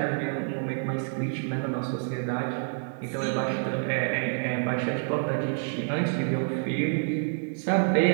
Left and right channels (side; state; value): left; silent; 60 dB below the other